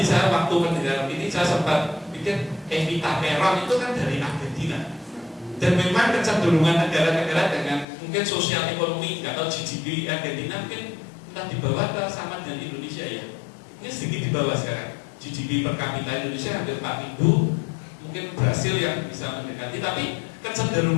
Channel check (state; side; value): drops out; right; at 7.9 s